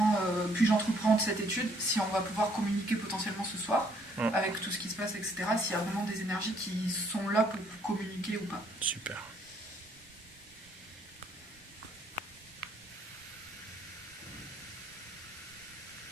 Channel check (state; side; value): normal; both; correlation 0.66